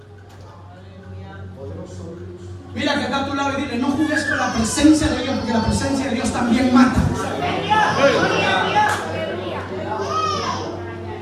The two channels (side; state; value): both; identical; correlation 1.00